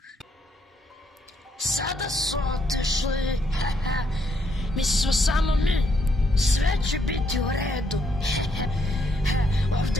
Sada su otešli. Mi smo samo mi. Sve će biti u redu.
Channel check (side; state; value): both; normal; correlation 0.74